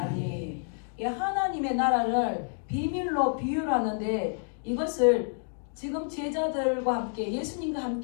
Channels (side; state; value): right; silent; digital silence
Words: 하나님의 나라를 비밀로 비유로 하는데, 이것을 지금 제자들과 함께 예수님과